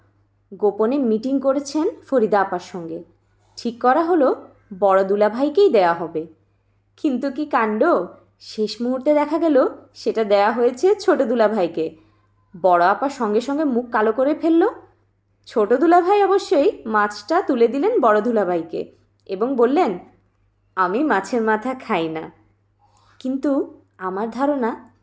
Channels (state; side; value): identical; both; correlation 1.00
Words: গোপনে মিটিং করেছেন ফরিদা আপার সঙ্গে। ঠিক করা হলো বড় দুলাভাইকেই দেয়া হবে। কিন্তু কি কাণ্ড! শেষ মুহূর্তে দেখা গেল সেটা দেয়া হয়েছে ছোট দুলাভাইকে। বড় আপা সঙ্গে সঙ্গে মুখ কালো করে ফেলল। ছোট দুলাভাই অবশ্যই মাছটা তুলে দিলেন বড় দুলাভাইকে এবং বললেন, আমি মাছের মাথা খাই না। কিন্তু আমার ধারণা